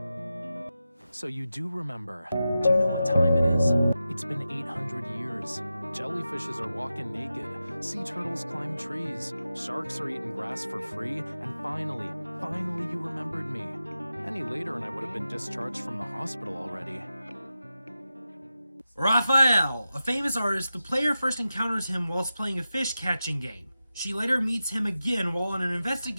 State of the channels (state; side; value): inverted; both; correlation -0.92